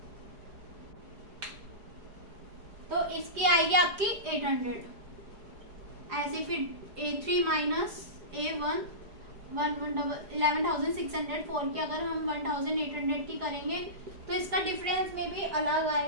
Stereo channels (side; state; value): left; late; 4.9 ms